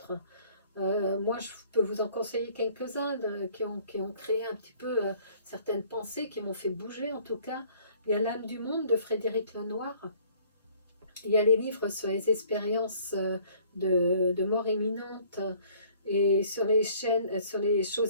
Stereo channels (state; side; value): inverted; both; correlation -0.57